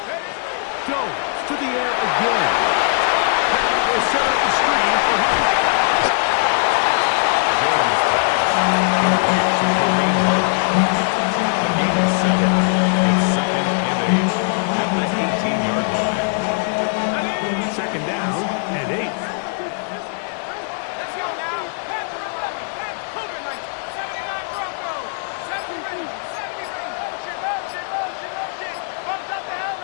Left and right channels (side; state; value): right; silent; digital silence